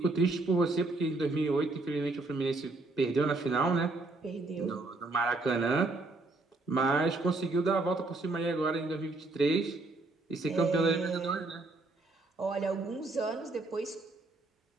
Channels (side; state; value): left; quieter; 3.3 dB